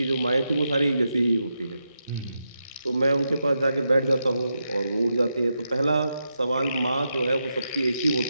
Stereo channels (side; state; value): both; inverted; correlation -0.85